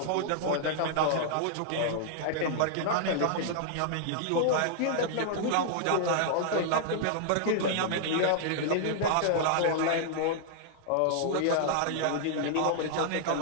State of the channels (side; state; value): both; different; correlation -0.01